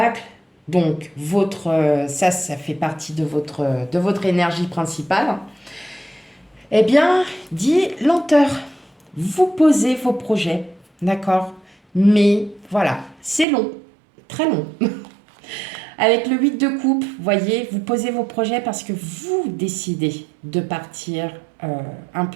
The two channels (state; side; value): drops out; left; at 13.5 s